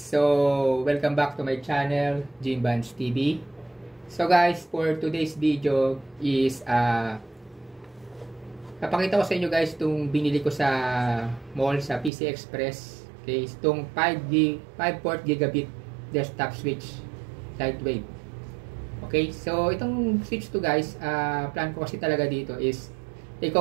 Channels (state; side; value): drops out; left; at 12.1 s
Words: welcome back to my channel, Jimbans TV. So guys, for today's video is napakita ko sa inyo guys itong binili ko sa mall sa PC Express. Okay, itong 5 port gigabit desktop switch lightweight. Okay, so itong switch to guys, plan ko kasi talaga dito is